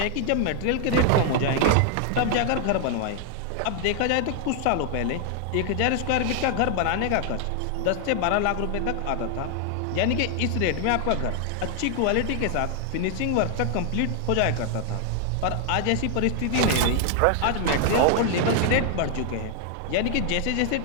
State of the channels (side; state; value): both; different; correlation 0.00